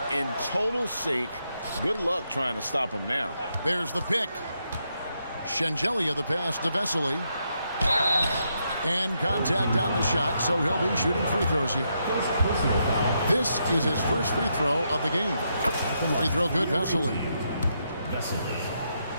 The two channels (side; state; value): both; inverted; correlation -0.80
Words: in total sync. Good luck trying to stop him now. There's the pick. Shengelia the pass to Vesely. And contact on the shot, so he'll be shooting free throws here. This is his first free throw of the game. Free throw good, Vesely. Vesely.